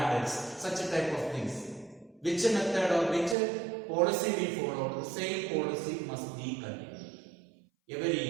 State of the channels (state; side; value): drops out; left; at 3.4 s